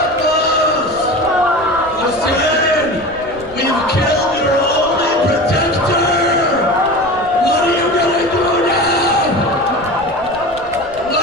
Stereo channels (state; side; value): noise; right; rumble, 20 dB below the sound